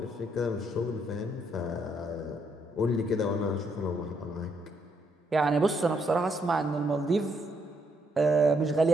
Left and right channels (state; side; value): normal; both; correlation 0.74